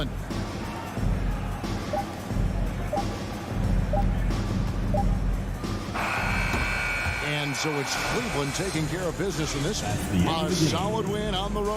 And so it's Cleveland taking care of business in this one. A solid win on the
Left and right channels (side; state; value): both; identical; correlation 1.00